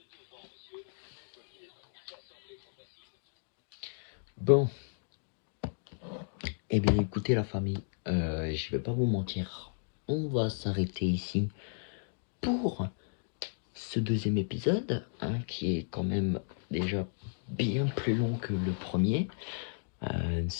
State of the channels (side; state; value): right; silent; digital silence